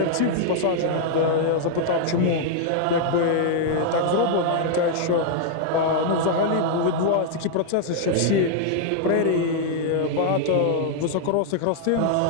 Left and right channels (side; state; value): both; different; correlation -0.01